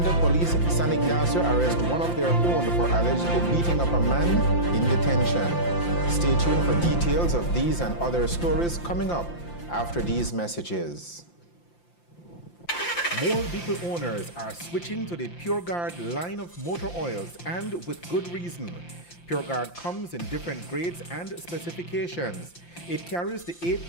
the police in San Ignacio arrest one of their own for allegedly beating up a man in detention. Stay tuned for details of these and other stories coming up after these messages. More vehicle owners are switching to the PureGuard line of motor oils, and with good reason. PureGuard comes in different grades and specifications. It carries the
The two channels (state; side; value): late; right; 5.8 ms